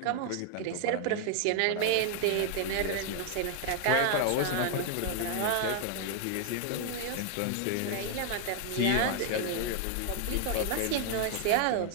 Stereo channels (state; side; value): different; both; correlation 0.00